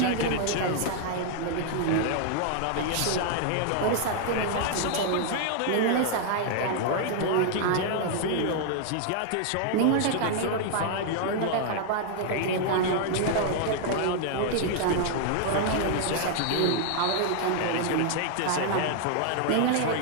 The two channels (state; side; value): different; both; correlation 0.00